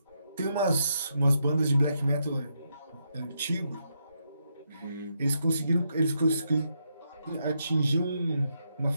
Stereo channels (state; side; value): inverted; both; correlation -0.80